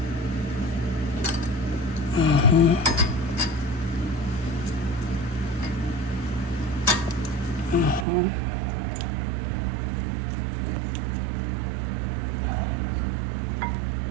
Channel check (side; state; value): left; drops out; at 8.1 s